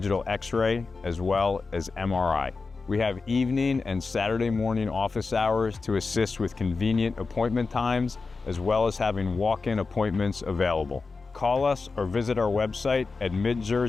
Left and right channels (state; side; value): quieter; right; 4.2 dB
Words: x-ray, as well as MRI. We have evening and Saturday morning office hours to assist with convenient appointment times, as well as having walk-in appointments available. Call us or visit our website at